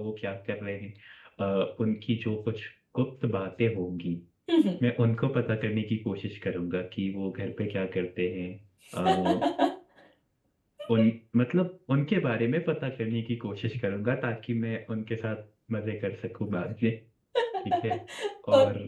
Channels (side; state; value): both; identical; correlation 1.00